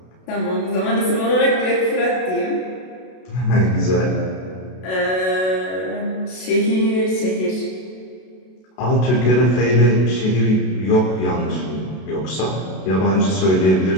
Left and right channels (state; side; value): late; right; 32 ms